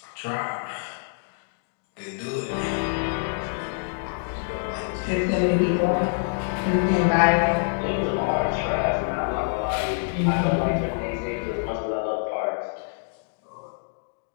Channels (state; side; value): silent; right; digital silence